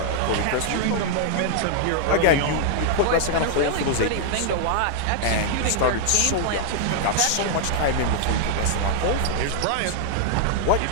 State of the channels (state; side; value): different; both; correlation 0.00